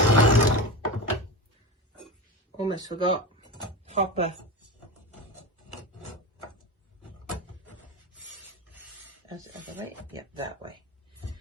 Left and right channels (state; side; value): normal; both; correlation 0.24